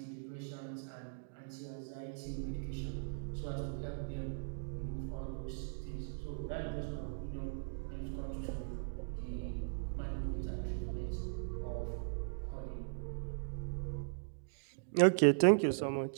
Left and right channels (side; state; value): left; silent; digital silence